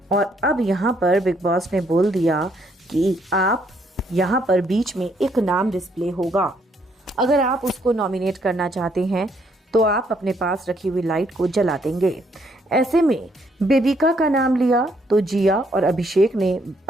और अब यहाँ पर बिग बॉस ने बोल दिया कि आप यहाँ पर बीच में एक नाम डिस्प्ले होगा। अगर आप उसको नॉमिनेट करना चाहते हैं तो आप अपने पास रखी हुई लाइट को जला देंगे। ऐसे में बेबिका का नाम लिया तो जिया और अभिषेक ने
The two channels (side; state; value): both; normal; correlation 0.70